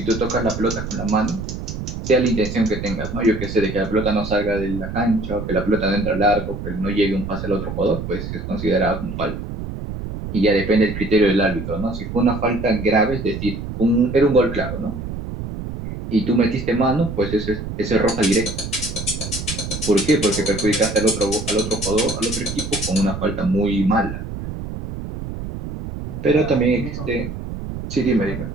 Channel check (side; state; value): right; noise; rumble, 7 dB below the sound